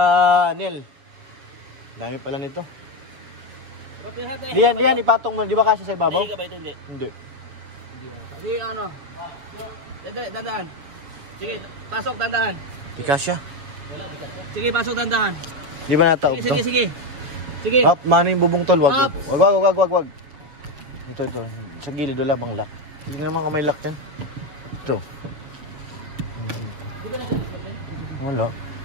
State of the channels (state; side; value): late; left; 7.3 ms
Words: Nel. Dami pala nito. Diyan, ipatong mo. Di ba kasi sa ibabaw? Hindi ka ba ito? Hindi. Hindi. Sige, ano? Dandahan. Sige, pasok, dandahan. Di kasya. Sige, pasok, dandahan. Di ba nataob to? Sige. Up, mano yung bubong tol? Wag. Up. Wag. Ito. Sa gilid, wala bang lock? Hindi naman kung may lock dyan. Ito. Wala.